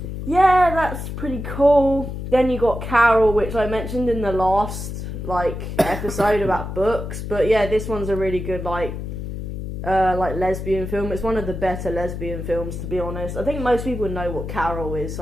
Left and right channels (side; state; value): left; noise; hum, 6 dB below the sound